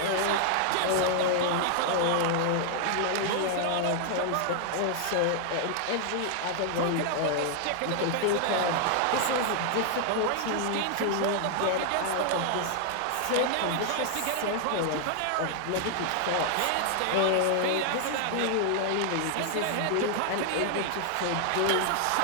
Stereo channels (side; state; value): both; different; correlation 0.00